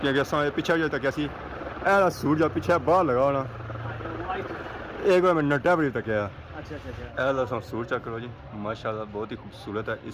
क्योंकि असा पिछले जो तक ऐसी ऐसा सूट जो पिछले बाहर लगा होना एक बार मैं नटा बड़ी तक आया ऐसा सूट चेक करो जी माशाल्लाह बहुत ही खूबसूरत है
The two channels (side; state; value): both; identical; correlation 1.00